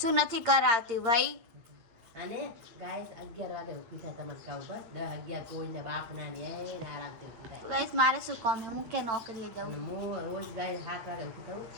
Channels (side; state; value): left; late; 9.1 ms